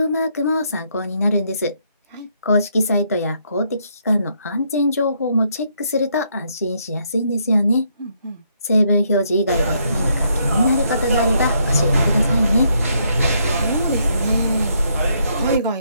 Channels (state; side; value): inverted; both; correlation -0.74